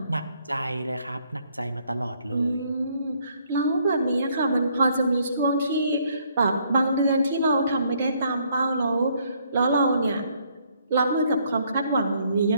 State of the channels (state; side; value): inverted; both; correlation -0.68